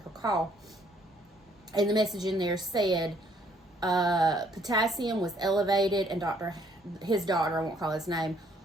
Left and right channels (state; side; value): normal; both; correlation 0.65